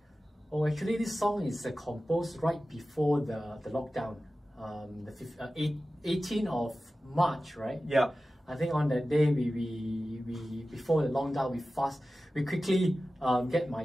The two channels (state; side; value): normal; both; correlation 0.95